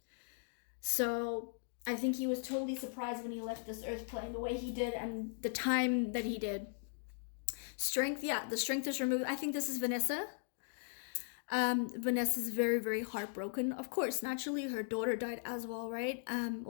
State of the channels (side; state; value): right; silent; digital silence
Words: So I think he was totally surprised when he left this earth plane the way he did and the time that he did. Strength, yeah, the strength is removed. I think this is Vanessa. Vanessa's very, very heartbroken. Of course, naturally, her daughter died as well, right?